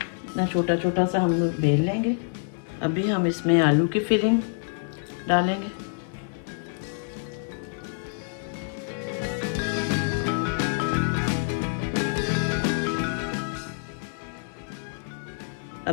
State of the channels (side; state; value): right; silent; digital silence